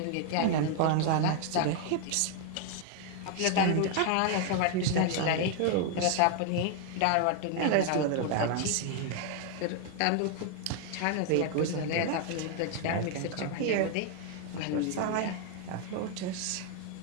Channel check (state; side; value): different; both; correlation 0.00